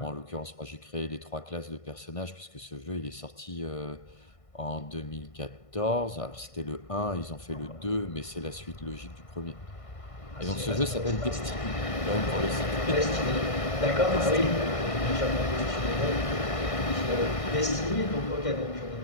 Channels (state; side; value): late; right; 1.6 ms